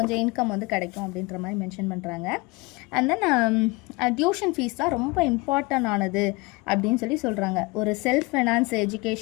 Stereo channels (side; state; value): right; quieter; 25.1 dB